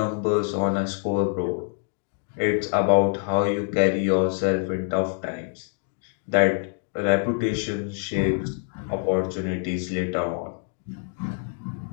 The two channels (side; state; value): right; silent; 58 dB below the other